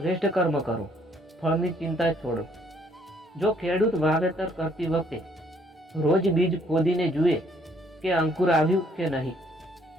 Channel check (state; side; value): normal; both; correlation 0.65